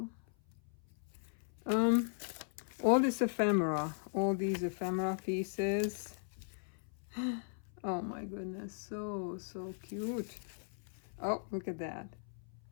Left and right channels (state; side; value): silent; right; 53 dB below the other